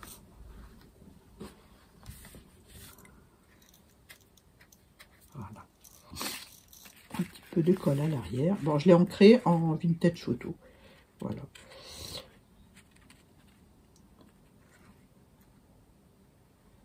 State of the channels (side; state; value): both; identical; correlation 1.00